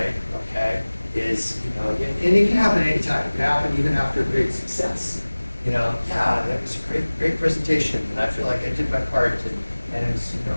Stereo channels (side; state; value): both; inverted; correlation -1.00